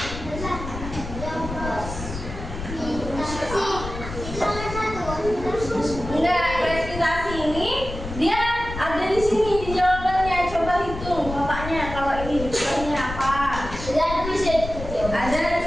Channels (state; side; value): noise; left; rumble, 8 dB below the sound